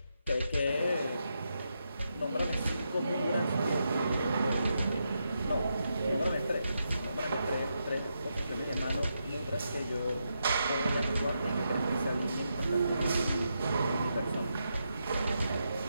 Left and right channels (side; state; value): both; inverted; correlation -0.84